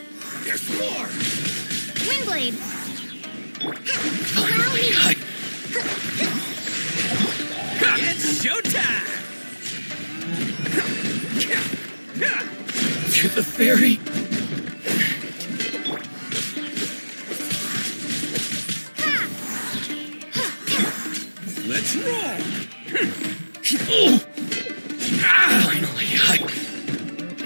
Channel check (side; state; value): both; inverted; correlation -1.00